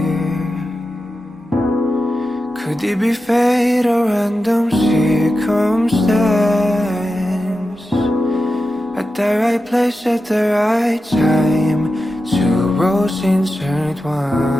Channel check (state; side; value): normal; both; correlation 0.91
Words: Could it be fate or random circumstance? At the right place at the right time, two roads intertwine.